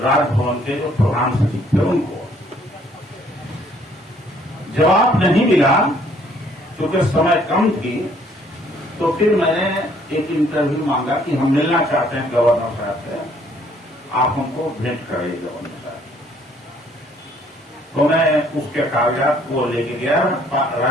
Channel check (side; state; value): both; normal; correlation 0.63